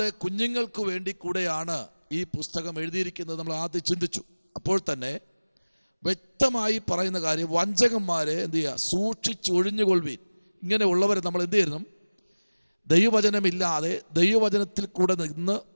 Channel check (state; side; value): inverted; both; correlation -1.00